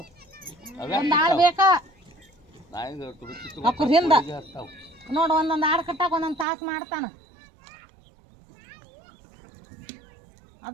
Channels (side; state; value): left; drops out; at 6.5 s